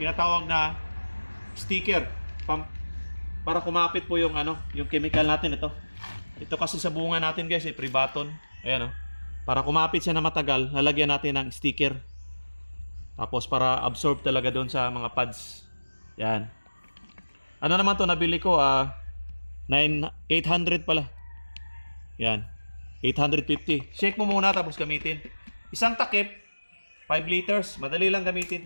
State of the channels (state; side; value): inverted; both; correlation -1.00